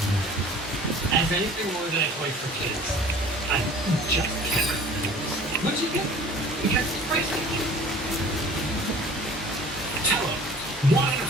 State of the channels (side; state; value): both; normal; correlation 0.47